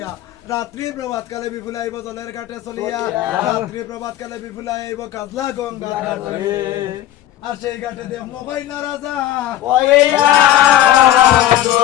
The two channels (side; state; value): right; quieter; 13.0 dB